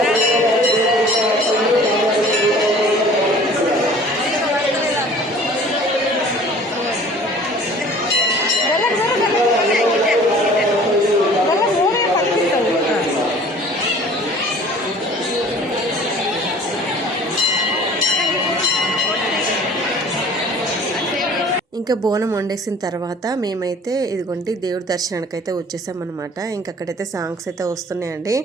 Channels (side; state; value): both; normal; correlation 0.48